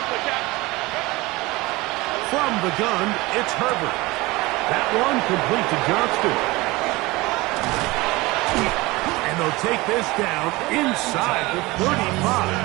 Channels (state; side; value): quieter; left; 21.6 dB